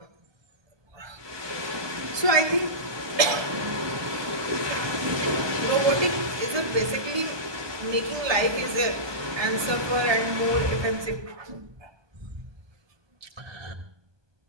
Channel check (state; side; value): late; left; 1.2 ms